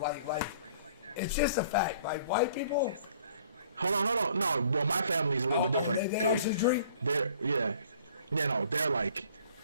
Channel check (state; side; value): inverted; both; correlation -0.55